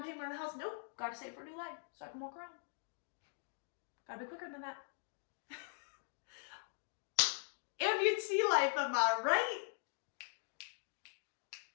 payment on the house. Nope, gotta save for a new leg so I can walk around. Gotta be quicker than that. Amputee life, am I right?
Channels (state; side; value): silent; right; digital silence